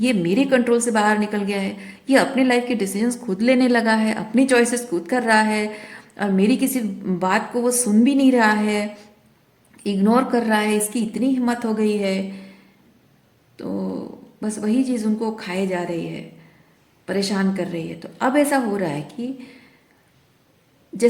ये मेरे कंट्रोल से बाहर निकल गया है, ये अपने लाइफ के डिसीजंस खुद लेने लगा है, अपनी चॉइसेस खुद कर रहा है, और मेरी किसी बात को वो सुन भी नहीं रहा है। इग्नोर कर रहा है, इसकी इतनी हिम्मत हो गई है, तो बस वही चीज़ उनको खाए जा रही है, परेशान कर रही है। तो अब ऐसा हो रहा है कि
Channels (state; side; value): identical; both; correlation 1.00